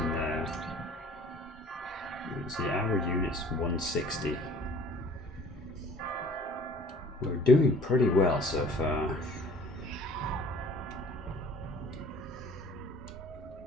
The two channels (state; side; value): normal; both; correlation 0.51